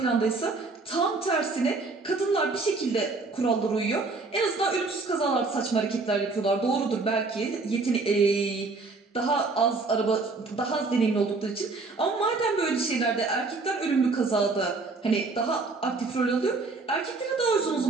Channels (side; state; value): left; quieter; 3.8 dB